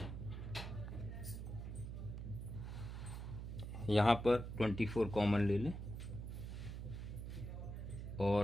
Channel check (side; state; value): right; noise; hum, 6 dB below the sound